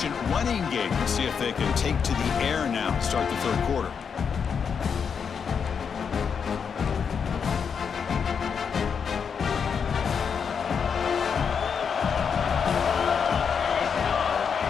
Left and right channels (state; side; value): quieter; right; 6.6 dB